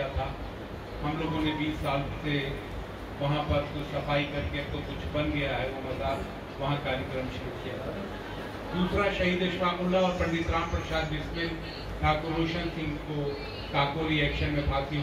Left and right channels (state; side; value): identical; both; correlation 1.00